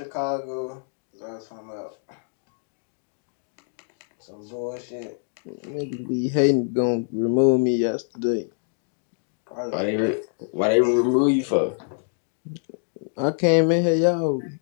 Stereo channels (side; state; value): right; silent; digital silence